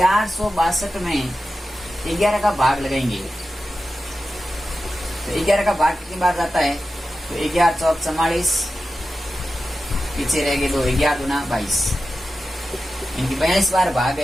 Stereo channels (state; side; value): normal; both; correlation 0.93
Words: में 11 का भाग लगाएंगे। तो 11 का भाग कितनी बार जाता है, तो 11 4 44, पीछे रह गए 2, 11 दूना 22, इनकी 42 बार भाग